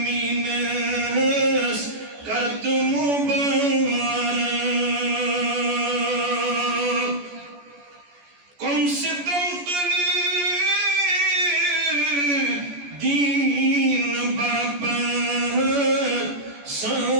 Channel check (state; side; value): late; left; 14 ms